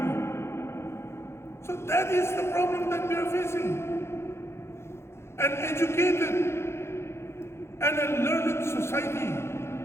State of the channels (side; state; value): right; late; 0.13 ms